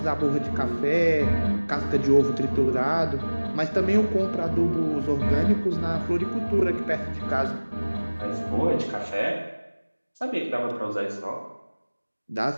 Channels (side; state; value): both; inverted; correlation -1.00